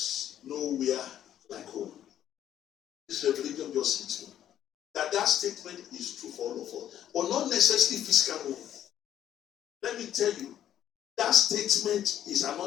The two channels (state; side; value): quieter; right; 10.9 dB